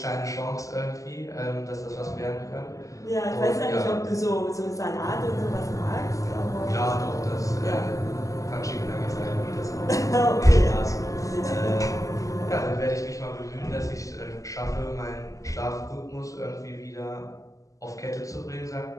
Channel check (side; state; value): right; late; 0.16 ms